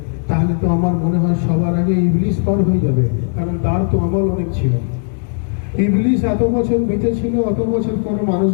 তাহলে তো আমার মনে হয় সবার আগে ইবলিস পার হয়ে যাবে, কারণ তার তো আমল অনেক ছিল। ইবলিস এত বছর বেঁচে ছিল, অত বছর কোনো মানুষ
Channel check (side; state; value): right; silent; 56 dB below the other